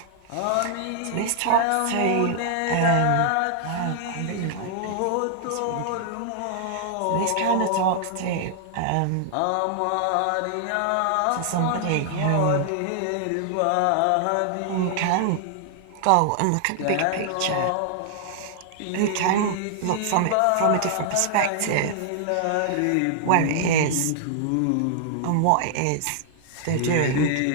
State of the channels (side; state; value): both; different; correlation -0.01